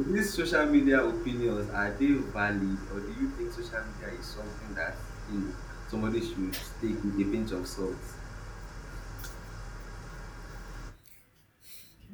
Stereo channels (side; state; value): both; identical; correlation 1.00